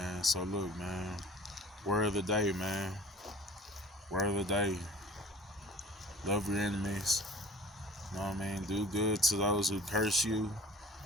So look, man. Word of the day, man. Word of the day. Love your enemies. You know what I mean? Do good to those who curse you,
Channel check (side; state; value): both; normal; correlation 0.46